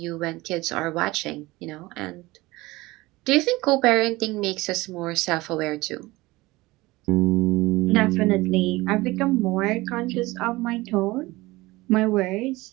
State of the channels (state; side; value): quieter; left; 20.4 dB